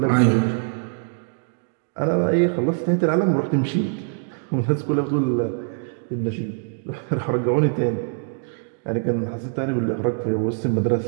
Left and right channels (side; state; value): left; silent; 63 dB below the other